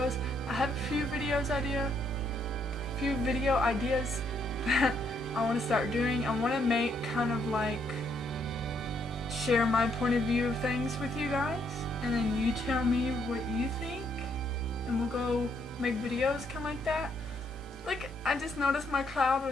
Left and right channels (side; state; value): both; normal; correlation 0.73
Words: I have a few video ideas that I want to start doing. I want to make kind of like share my point of view of things with you guys, and then you tell me what you think, and we'll go make videos kind of like that. Like, I just noticed my cloud